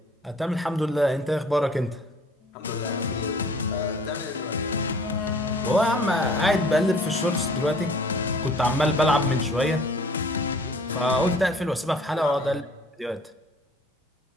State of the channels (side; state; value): both; normal; correlation 0.53